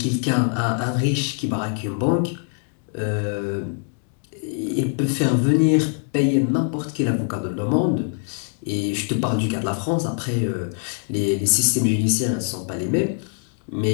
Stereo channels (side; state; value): right; silent; 56 dB below the other